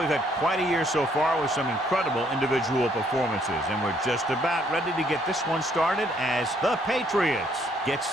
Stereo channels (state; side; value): normal; both; correlation 0.67